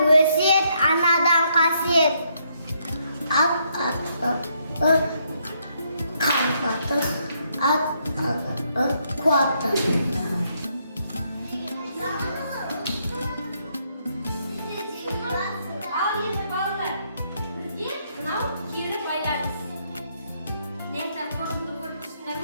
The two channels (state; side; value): inverted; both; correlation -0.74